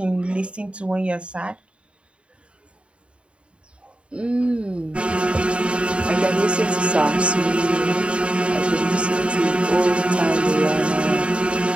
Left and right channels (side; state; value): left; late; 0.058 ms